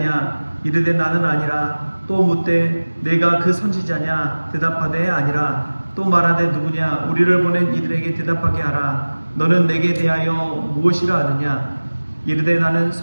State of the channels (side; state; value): both; inverted; correlation -1.00